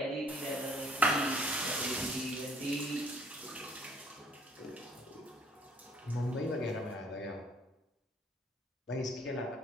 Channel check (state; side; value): normal; both; correlation 0.60